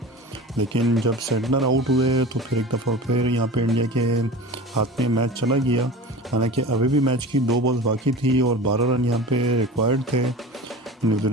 लेकिन जब सेटनर आउट हुए तो फिर एक दफ़ा फिर यहाँ पे इंडिया के हाथ में मैच चला गया। हालांकि अभी भी मैच की 2 बॉल्स बाकी थी और 12 रन यहाँ पे रिक्वायर्ड थे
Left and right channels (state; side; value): normal; both; correlation 0.35